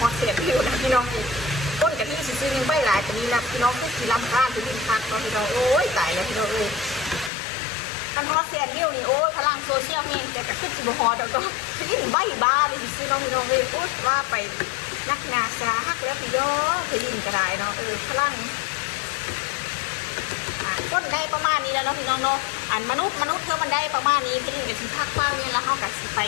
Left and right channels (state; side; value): drops out; right; at 7.3 s